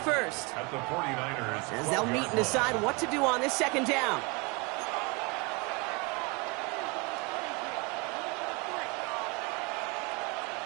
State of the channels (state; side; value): quieter; left; 28.7 dB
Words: first. As they'll meet and decide what to do on this 2nd down.